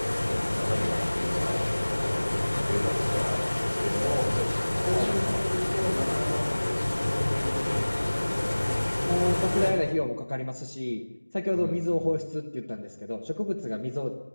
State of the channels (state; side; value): inverted; both; correlation -1.00